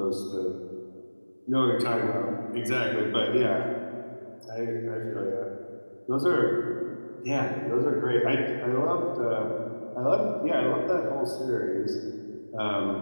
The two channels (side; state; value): both; inverted; correlation -1.00